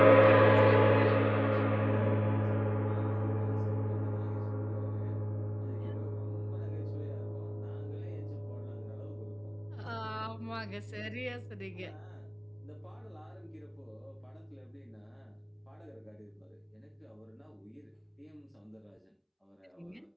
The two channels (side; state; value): both; identical; correlation 1.00